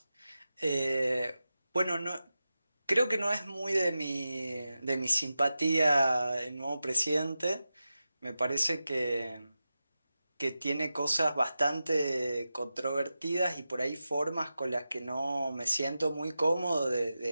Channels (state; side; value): inverted; both; correlation -0.92